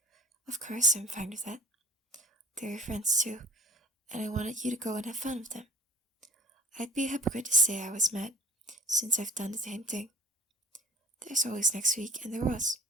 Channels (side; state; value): both; normal; correlation 0.42